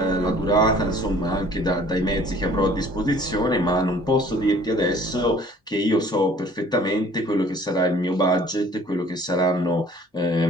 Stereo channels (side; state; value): both; normal; correlation 0.53